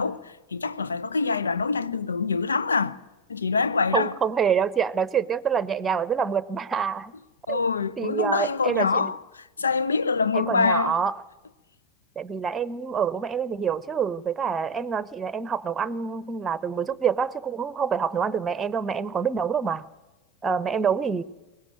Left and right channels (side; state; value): both; normal; correlation 0.03